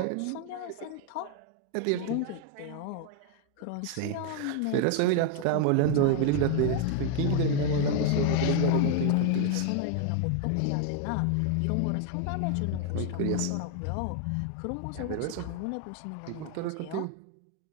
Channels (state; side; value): different; both; correlation 0.00